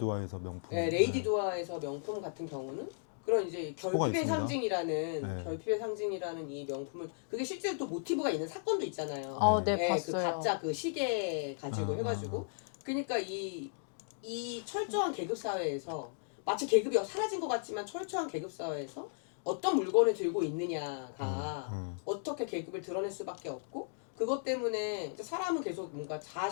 명품. 네, 레이디 두아에서 명품 같은 경우는 그런 이제 결핍의 있습니다. 상징이라는 네. 결핍의 상징이라는 이 명품을 그게 실제로 또 모티브가 있는 사건도 있잖아요. 네, 그 봤어요. 가짜 그 시계 가지고 해가지고 그러니까 이 철저한 계급 사회에서 마치 계급이 사라진 것 같지만 철저한 계급 사회에서 어떤 물건을 들고 있느냐가 어떻게 계급을 드러낼 수밖에 없고 그것 때문에 이제 사람은 계속 뭔가 자아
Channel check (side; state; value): right; silent; digital silence